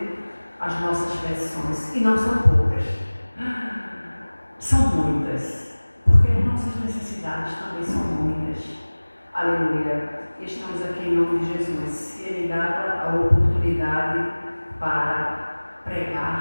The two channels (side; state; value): both; inverted; correlation -1.00